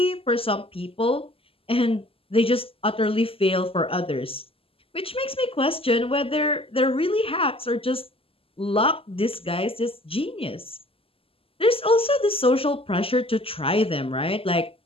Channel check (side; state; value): right; late; 0.27 ms